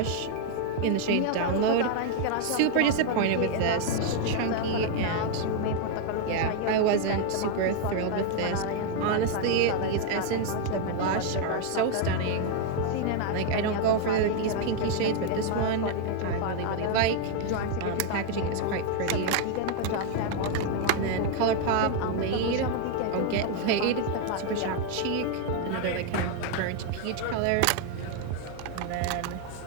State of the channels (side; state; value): both; different; correlation 0.00